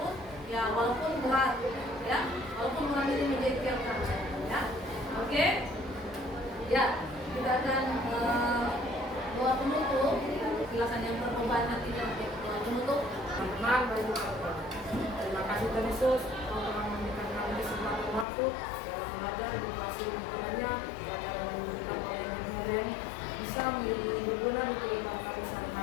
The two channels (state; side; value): drops out; right; at 18.2 s